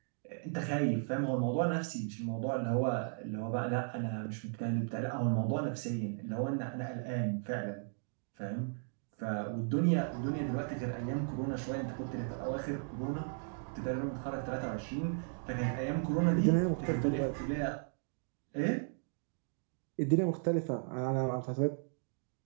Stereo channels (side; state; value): left; silent; 54 dB below the other